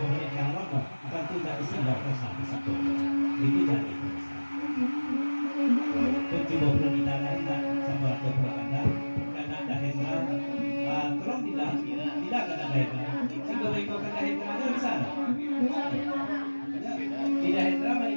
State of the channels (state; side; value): inverted; both; correlation -1.00